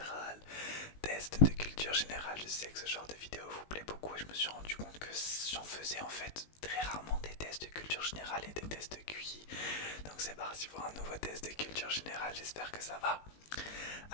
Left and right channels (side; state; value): right; late; 19 ms